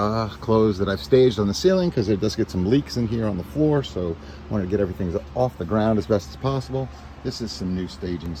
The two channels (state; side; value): identical; both; correlation 1.00